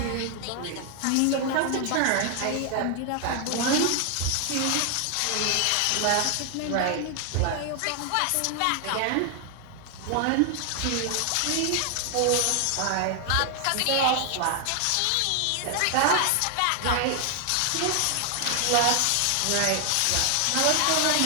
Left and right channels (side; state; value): both; different; correlation 0.00